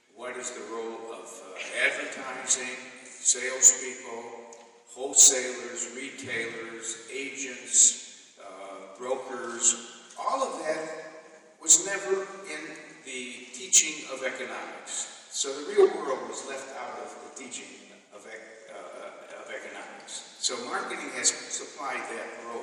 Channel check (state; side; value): identical; both; correlation 1.00